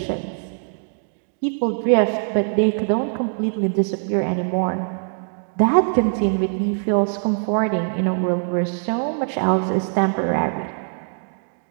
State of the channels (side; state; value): left; silent; digital silence